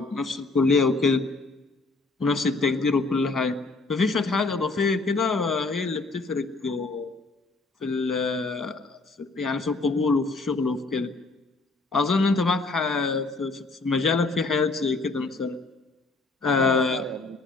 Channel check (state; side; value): quieter; right; 3.5 dB